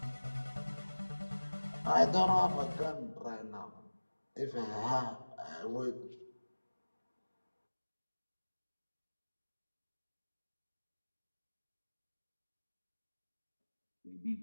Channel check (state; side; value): inverted; both; correlation -1.00